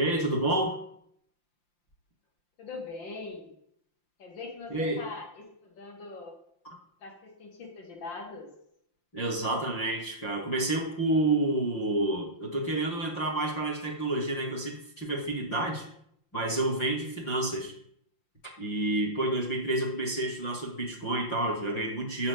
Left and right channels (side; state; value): right; late; 5.8 ms